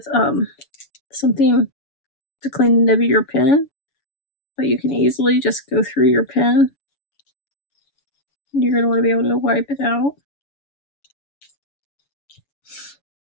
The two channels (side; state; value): right; late; 7.0 ms